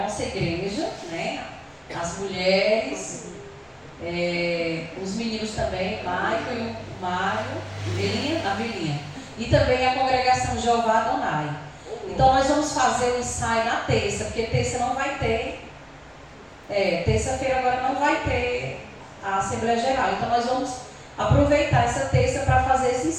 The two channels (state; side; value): identical; both; correlation 1.00